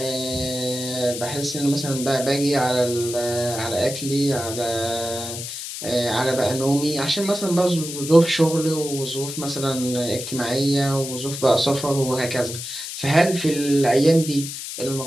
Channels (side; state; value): left; noise; hiss, 8 dB below the sound